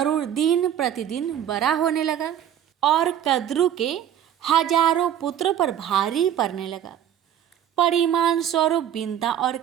दिन प्रतिदिन बड़ा होने लगा और कद्रु के हजारों पुत्रों पर भारी पड़ने लगा। परिमाण स्वरूप बिंता और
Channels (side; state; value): left; quieter; 10.1 dB